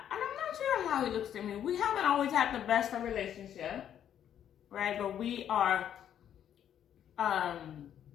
sure how he looks to me. We haven't always had the best of relationship, right? But we are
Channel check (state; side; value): quieter; right; 9.9 dB